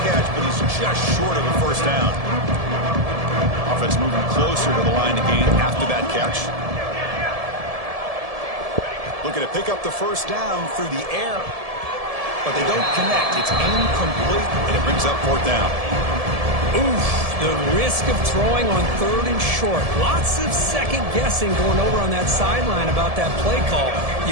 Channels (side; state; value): left; late; 1.7 ms